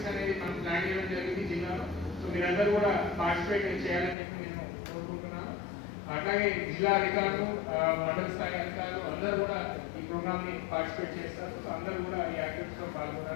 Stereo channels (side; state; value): right; drops out; at 4.2 s